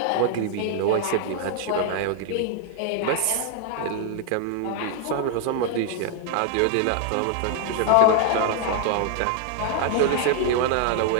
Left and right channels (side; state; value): both; different; correlation 0.00